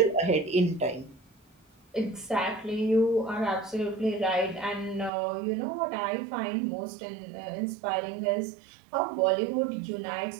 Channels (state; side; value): drops out; left; at 5.1 s